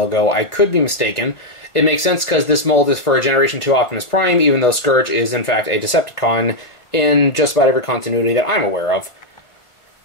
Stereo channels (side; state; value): right; late; 1.4 ms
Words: I could be mistaken. It makes sense because this mold is for a Generation 2 Optimus Prime, even though Scourge is in fact a Decepticon in just about every continuity that I'm aware of.